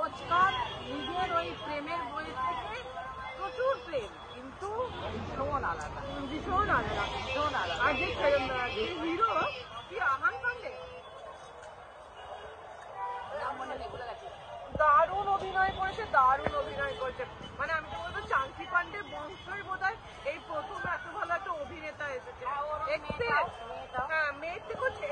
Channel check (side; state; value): both; identical; correlation 1.00